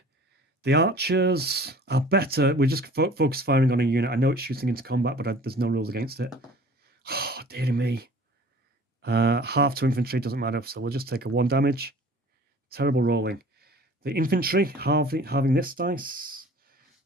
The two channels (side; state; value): both; normal; correlation 0.47